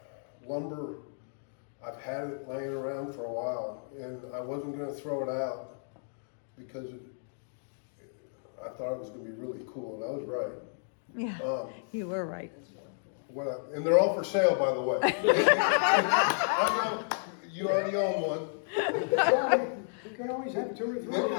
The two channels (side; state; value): right; silent; digital silence